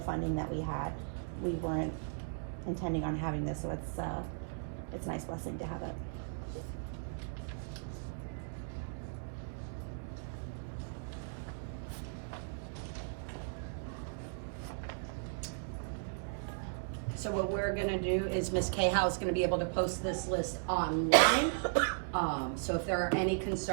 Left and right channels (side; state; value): left; silent; digital silence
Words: funding that we had. We weren't intending on having this, so it's a nice blessing to have it. So what we're gonna do is Ms. Cahow is gonna be able to post this list online. So if there are any